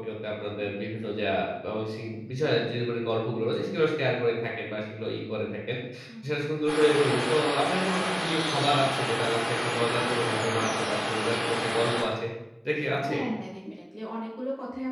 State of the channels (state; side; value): identical; both; correlation 1.00